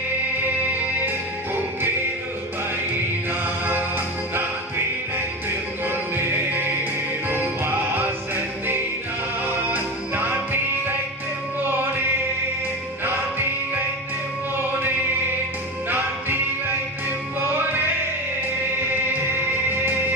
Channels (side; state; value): both; normal; correlation 0.23